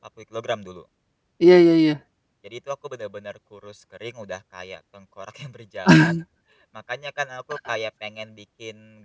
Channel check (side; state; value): both; identical; correlation 1.00